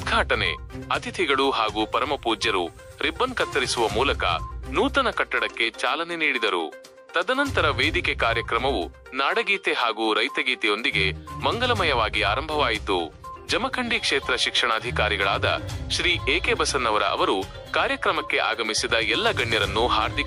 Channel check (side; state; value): both; identical; correlation 1.00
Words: ಅತಿಥಿಗಳು ಹಾಗೂ ಪರಮಪೂಜ್ಯರು ರಿಬ್ಬನ್ ಕತ್ತರಿಸುವ ಮೂಲಕ ನೂತನ ಕಟ್ಟಡಕ್ಕೆ ಚಾಲನೆ ನೀಡಿದರು. ತದನಂತರ ವೇದಿಕೆ ಕಾರ್ಯಕ್ರಮವು ನಾಡಗೀತೆ ಹಾಗೂ ರೈತಗೀತೆಯೊಂದಿಗೆ ಮಂಗಲಮಯವಾಗಿ ಆರಂಭವಾಯಿತು. ಜಮಖಂಡಿ ಕ್ಷೇತ್ರ ಶಿಕ್ಷಣಾಧಿಕಾರಿಗಳಾದ ಶ್ರೀ AK ಬಸನ್ನವರ ಅವರು ಕಾರ್ಯಕ್ರಮಕ್ಕೆ ಆಗಮಿಸಿದ ಎಲ್ಲ ಗಣ್ಯರನ್ನು